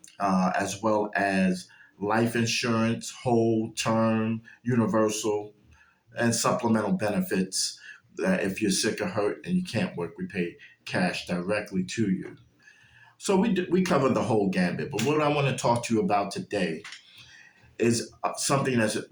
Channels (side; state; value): both; identical; correlation 1.00